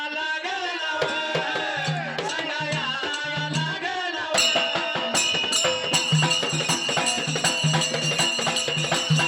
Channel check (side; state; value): both; identical; correlation 1.00